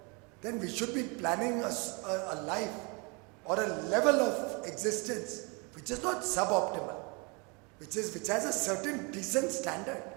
then we should be planning a life or a level of existence which is not suboptimal, which has a certain decent standard.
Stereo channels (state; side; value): quieter; left; 30.8 dB